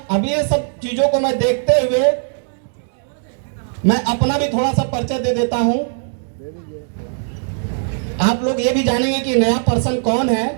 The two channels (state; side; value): silent; left; digital silence